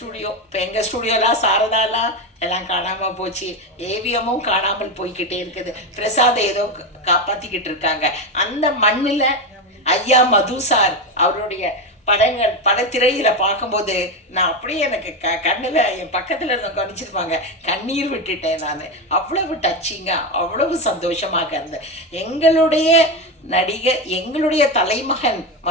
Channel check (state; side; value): normal; both; correlation 0.14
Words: இப்போ எங்கள் ஸ்டூடியோலாம் சாரதாலாம் எல்லாம் காணாமல் போச்சு, ஏவிஎம்மும் காணாமல் போய்கிட்டே இருக்குது. பிரசாத் ஏதோ காப்பாற்றிக்கிட்டு இருக்காங்க. அந்த மண்ணில் ஐயா மது சார் அவருடைய படத்திரையில் பார்க்கும்போது நான் அப்படியே எனக்கு கண்ணில் என் பக்கத்தில் இருந்த கவனிச்சிருப்பாங்க, கண்ணீர் விட்டுட்டேன் நான். அவ்வளவு டச்சிங்காக, அவ்வளவு சந்தோஷமாக இருந்தேன். எங்களுடைய நடிகை, எங்களுடைய தலைமகன்